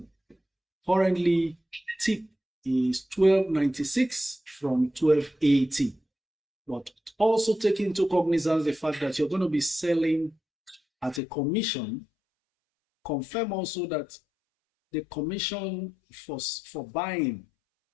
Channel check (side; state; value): right; drops out; at 11.2 s